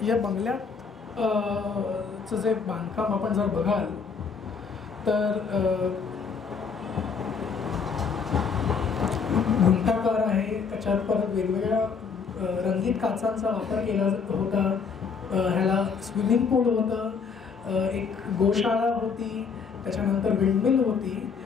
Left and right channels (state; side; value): quieter; right; 5.7 dB